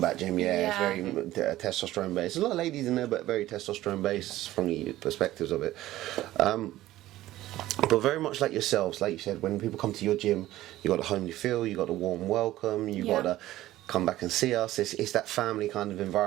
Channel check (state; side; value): quieter; left; 15.3 dB